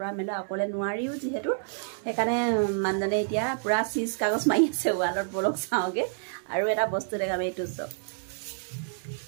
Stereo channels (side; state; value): left; silent; digital silence